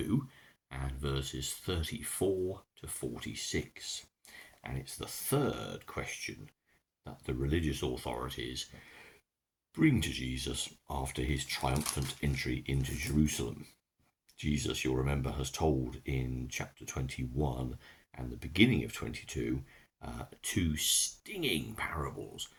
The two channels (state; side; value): identical; both; correlation 1.00